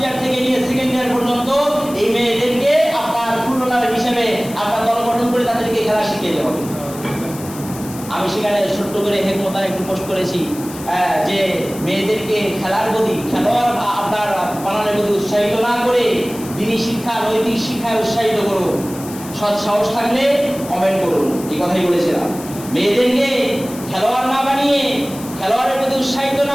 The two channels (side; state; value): left; noise; hiss, 15 dB below the sound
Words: ইয়ার থেকে নিয়ে সেকেন্ড ইয়ার পর্যন্ত এই মেয়েদেরকে আপনার ফুটবলার হিসেবে আপনার দল গঠন করে তাদেরকে খেলা শিখিয়ে দেওয়া হবে। আমি সেখানে ছোট্ট করে হেকমতার একটু পোস্ট করেছি যে মেয়েদেরকে খেলার প্রতি, খেলোয়াড় আপনার বানানোর প্রতি উৎসাহিত না করে দিনী শিক্ষা, নৈতিক শিক্ষায় উৎসাহিত করুন। সৎ সাহস থাকলে কমেন্ট করুন, এই কথাই বলেছিলাম। মেয়েদেরকে খেলোয়াড় না বানিয়ে, খেলোয়াড়ের প্রতি উৎসাহিত